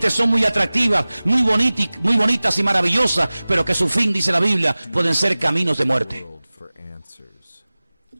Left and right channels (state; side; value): inverted; both; correlation -0.99